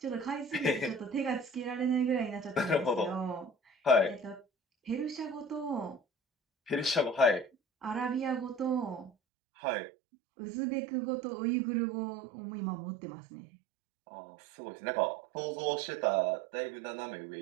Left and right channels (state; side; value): drops out; left; at 9.1 s